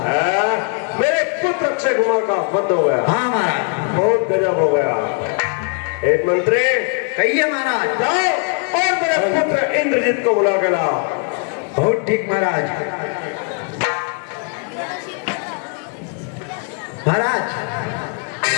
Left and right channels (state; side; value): quieter; right; 38.6 dB